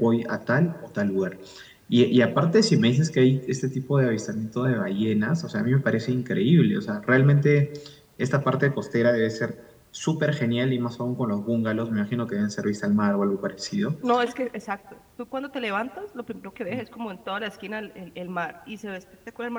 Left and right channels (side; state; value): both; identical; correlation 1.00